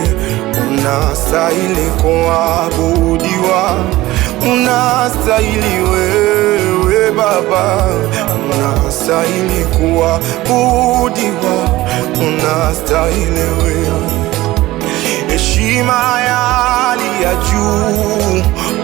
Unastahili kuabudiwa, unastahili wewe Baba, unastahili kuabudiwa, unastahili wewe. Heshima ya hali ya juu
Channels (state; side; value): quieter; left; 17.7 dB